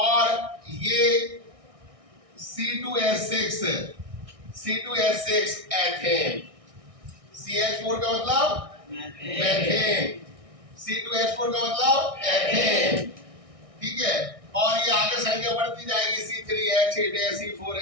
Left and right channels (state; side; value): late; left; 1.6 ms